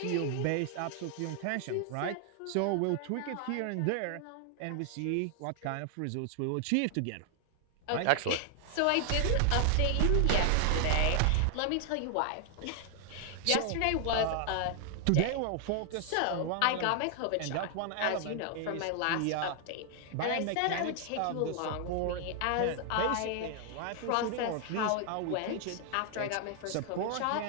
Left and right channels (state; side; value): different; both; correlation 0.00